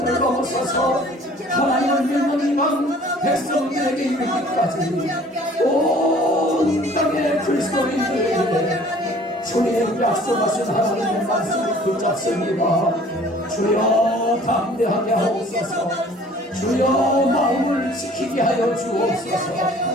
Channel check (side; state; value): both; normal; correlation 0.52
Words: 넘어서서 하나님을 믿는 이방 백성들에게 이르기까지 온 땅의 그리스도인들에게 주님 약속하신 하나님의 말씀을 붙잡습니다. 주여 담대하게 하옵소서. 주여 마음을 지키게 하여 주옵소서.